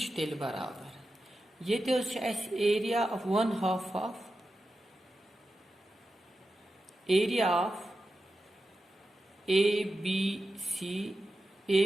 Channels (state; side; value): normal; both; correlation 0.91